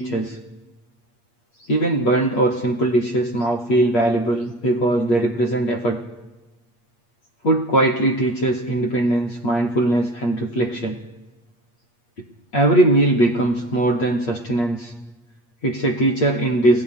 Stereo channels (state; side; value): late; right; 8.5 ms